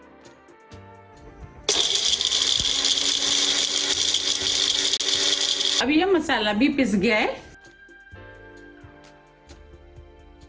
अब यह मसाला भी पिस गया है।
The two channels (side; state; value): both; identical; correlation 1.00